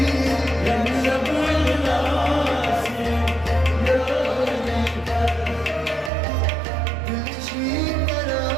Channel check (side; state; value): left; drops out; at 6.1 s